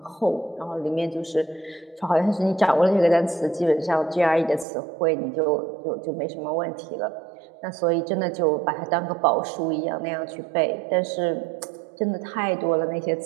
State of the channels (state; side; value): drops out; left; at 4.7 s